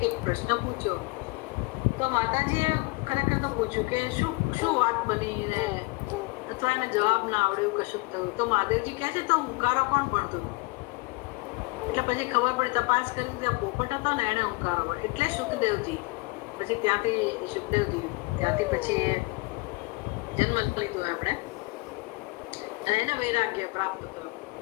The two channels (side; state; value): right; quieter; 25.6 dB